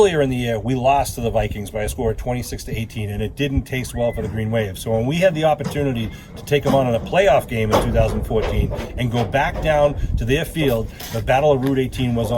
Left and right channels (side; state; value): both; identical; correlation 1.00